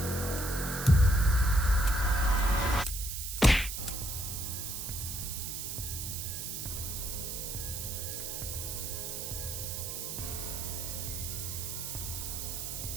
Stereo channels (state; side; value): noise; right; hiss, 5 dB below the sound